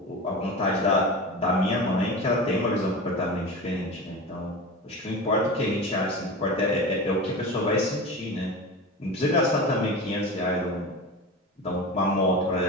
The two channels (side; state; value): both; normal; correlation 0.28